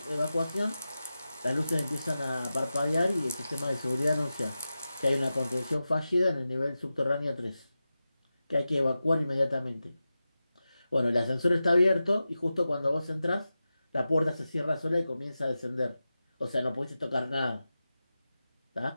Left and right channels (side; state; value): both; inverted; correlation -0.93